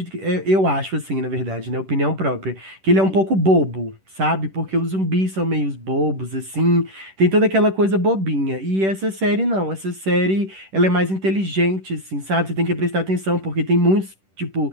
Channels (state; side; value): late; left; 10 ms